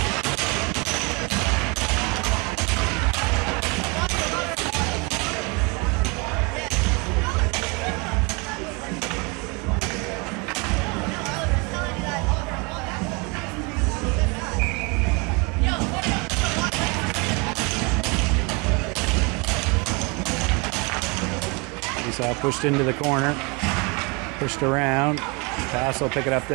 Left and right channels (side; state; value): left; quieter; 29.6 dB